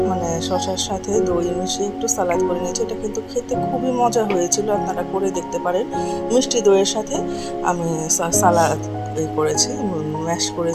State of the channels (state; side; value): identical; both; correlation 1.00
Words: মানে শসার সাথে দই মিশিয়ে একটু সালাদ করে নিয়েছি। এটা কিন্তু খেতে খুবই মজা হয়েছিল, আপনারা করে দেখতে পারেন। মিষ্টি দইয়ের সাথে আমি সালাদ করেছি, ম্যাশ